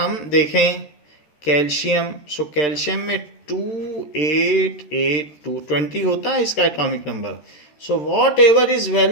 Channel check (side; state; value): right; late; 13 ms